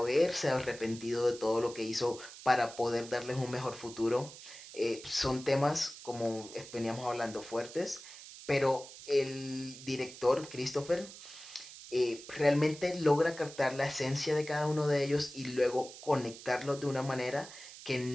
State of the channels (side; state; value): right; noise; hiss, 15 dB below the sound